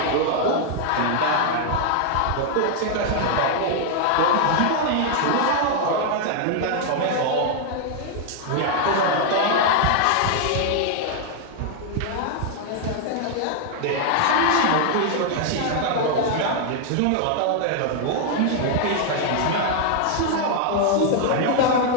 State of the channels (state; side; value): different; both; correlation 0.00